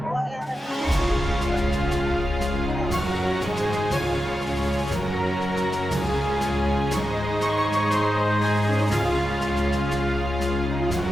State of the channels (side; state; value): both; normal; correlation 0.90